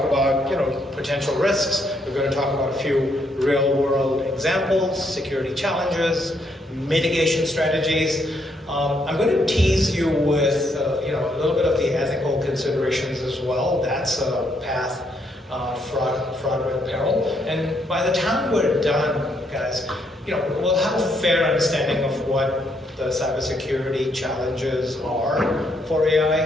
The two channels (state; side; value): normal; both; correlation 0.74